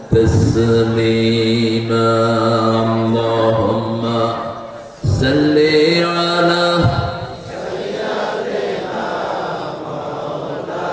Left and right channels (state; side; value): identical; both; correlation 1.00